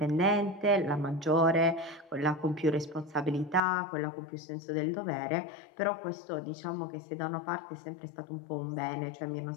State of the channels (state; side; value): drops out; right; at 3.6 s